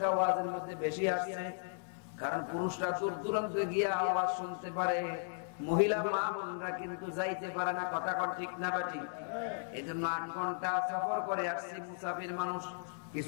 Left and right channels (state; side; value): silent; right; digital silence